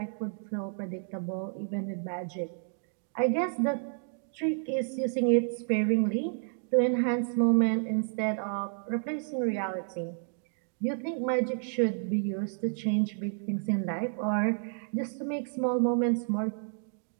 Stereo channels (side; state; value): left; silent; 57 dB below the other